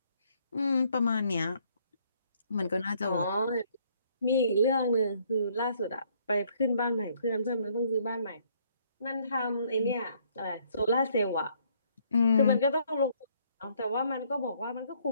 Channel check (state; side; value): inverted; both; correlation -0.66